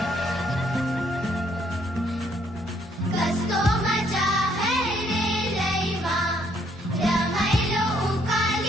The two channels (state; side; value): normal; both; correlation 0.68